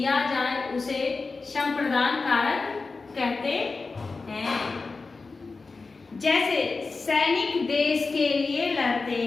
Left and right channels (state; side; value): quieter; right; 4.1 dB